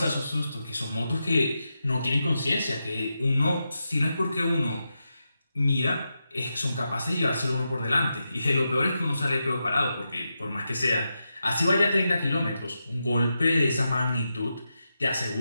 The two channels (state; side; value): inverted; both; correlation -0.88